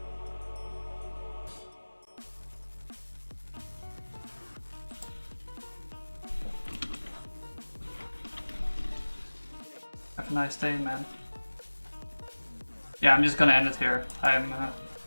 Have a nice day, man. Yeah, I'm just gonna end it here. I'm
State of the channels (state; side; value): inverted; both; correlation -1.00